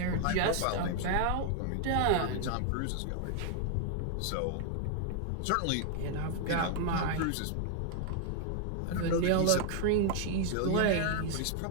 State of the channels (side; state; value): both; different; correlation 0.00